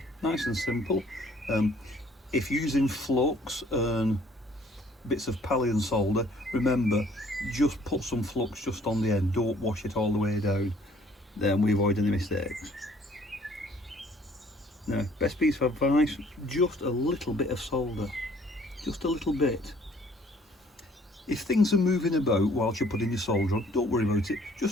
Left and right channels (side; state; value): both; normal; correlation 0.59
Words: nice and simple. If using flux and bits of Pallion solder, remember, just put some flux just on the end, don't wash it all the way down, then we avoid any mistakes. Now, best piece of advice, just a little bit of solder, just a little bit. If things are moving about whilst you're putting your solder on, don't worry about it,